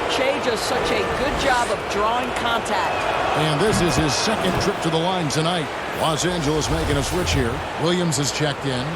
Shea does such a good job of drawing contact. And this is his second trip to the line tonight. Los Angeles making a switch here. Williams has checked in.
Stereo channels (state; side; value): identical; both; correlation 1.00